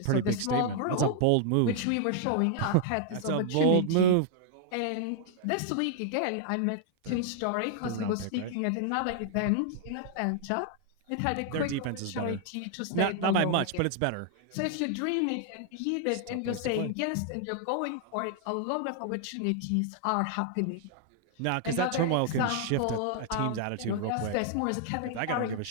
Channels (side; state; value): both; different; correlation 0.00